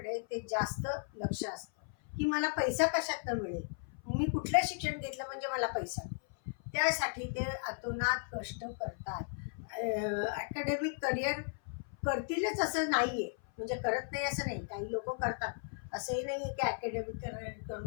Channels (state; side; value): silent; right; 54 dB below the other